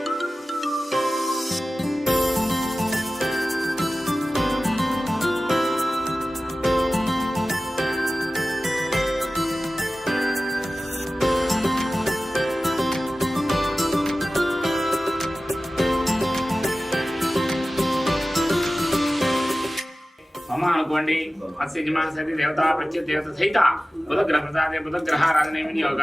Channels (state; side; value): normal; both; correlation 0.96